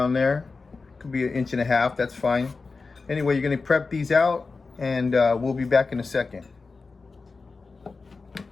there. Could be 1.5 inches, that's fine. Anyway, you're gonna prep these out and we'll be back in a second.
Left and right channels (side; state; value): right; quieter; 4.2 dB